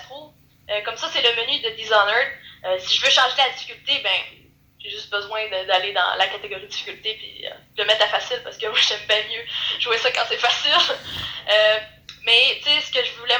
trouve. Comme ça, c'est le menu de Dishonored. Si je veux changer la difficulté, j'ai juste besoin d'aller dans la catégorie difficulté puis de le mettre à facile parce que moi, j'aime bien mieux jouer ça quand c'est facile. Mais, tu sais, ce que je voulais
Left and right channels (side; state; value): both; identical; correlation 1.00